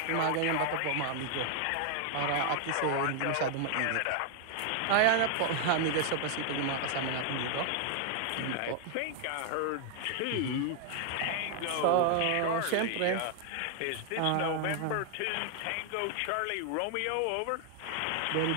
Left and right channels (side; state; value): both; different; correlation 0.00